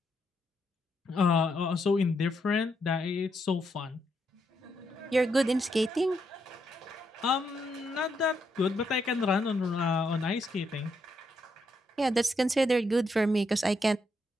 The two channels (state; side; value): normal; both; correlation 0.79